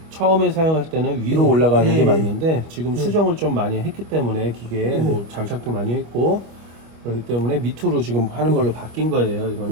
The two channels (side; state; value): left; late; 25 ms